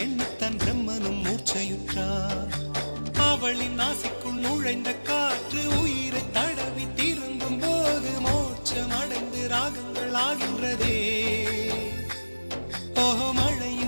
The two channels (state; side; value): inverted; both; correlation -1.00